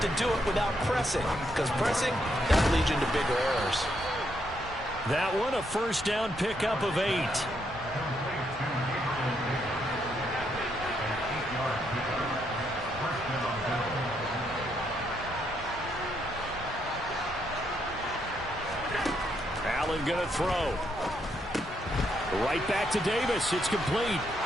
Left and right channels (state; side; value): normal; both; correlation 0.76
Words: to do it without pressing, because pressing, that leads into bigger errors. That one, a first down pickup of 8. Allen going to throw. Right back to Davis. It's complete.